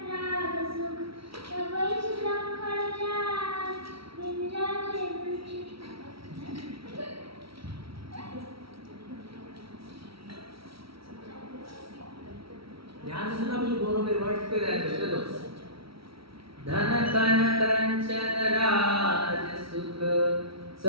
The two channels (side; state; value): left; late; 0.75 ms